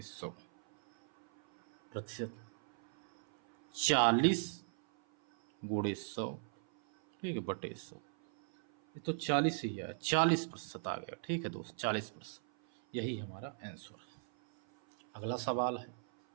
100 प्रतिशत 40 गुणे 100। ठीक है, बटे 100, ये तो 40 ही है, 40% आ गया। ठीक है दोस्त, 40%, यही हमारा आंसर है। अगला सवाल है,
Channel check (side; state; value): left; silent; 53 dB below the other